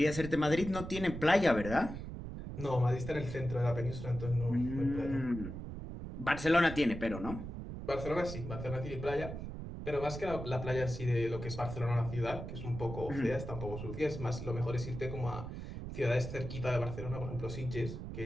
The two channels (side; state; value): right; noise; rumble, 8 dB below the sound